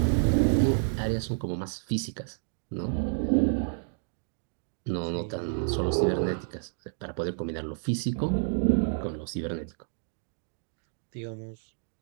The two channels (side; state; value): left; silent; digital silence